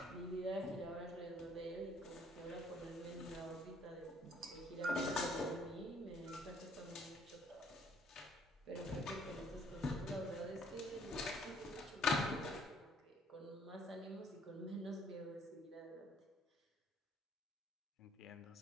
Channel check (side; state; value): both; normal; correlation 0.62